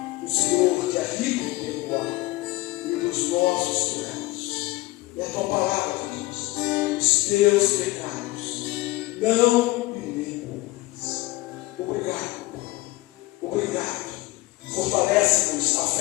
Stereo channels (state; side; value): quieter; right; 20.0 dB